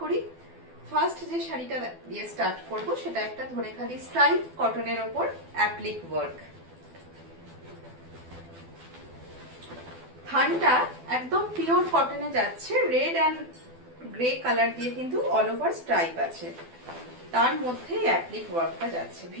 করি। ফার্স্ট যে শাড়িটা দিয়ে স্টার্ট করব সেটা একটা ধনেখালি স্ট্রাইপ কটনের ওপর অ্যাপ্লিক ওয়ার্ক। থানটা একদম পিওর কটনে যাচ্ছে, রেড অ্যান্ড গ্রে কালার দিয়ে কিন্তু অল ওভার স্ট্রাইপ আছে, তার মধ্যে অ্যাপ্লিক ওয়ার্কটা যাচ্ছে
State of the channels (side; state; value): left; late; 12 ms